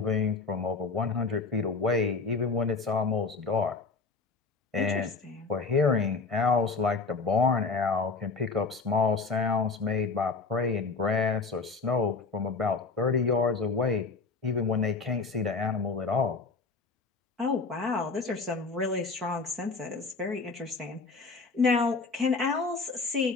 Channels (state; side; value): quieter; right; 4.3 dB